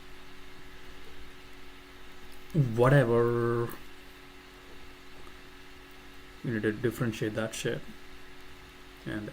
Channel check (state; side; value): identical; both; correlation 1.00